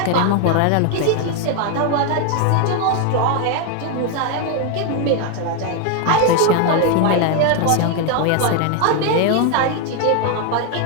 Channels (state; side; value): different; both; correlation 0.01